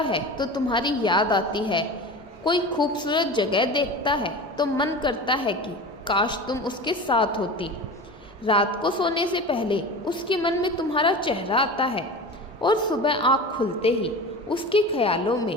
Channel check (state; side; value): normal; both; correlation 0.32